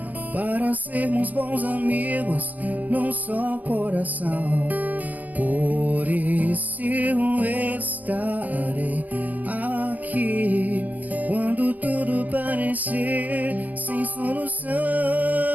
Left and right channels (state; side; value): late; left; 0.079 ms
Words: para sermos bons amigos num só coração. Por isso eu estarei aqui quando tudo parecer sem solução.